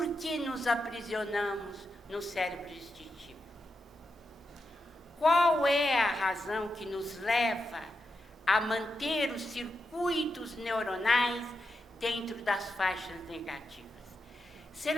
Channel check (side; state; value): both; normal; correlation 0.87